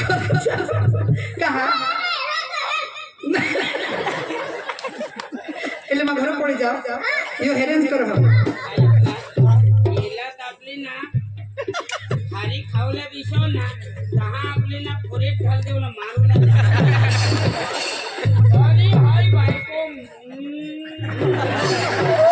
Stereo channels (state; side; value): identical; both; correlation 1.00